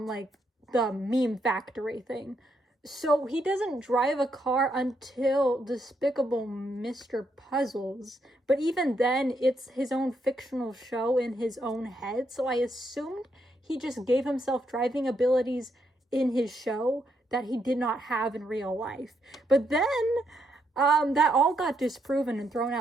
like the meme factory thing. So he doesn't drive a car until Despicable Mr. Puzzles. But even then, it's his own fictional show in his own head. So I assumed he just gave himself driving abilities in his show that he did not have in real life. But then that all got disproven and thrown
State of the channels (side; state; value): both; normal; correlation 0.77